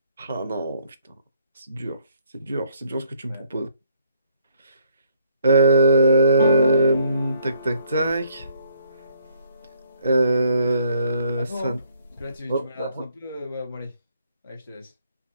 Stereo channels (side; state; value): both; inverted; correlation -0.68